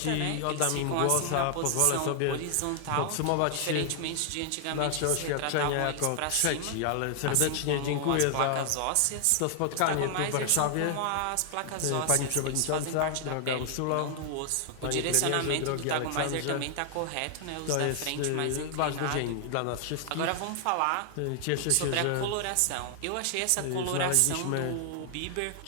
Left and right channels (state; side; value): different; both; correlation 0.00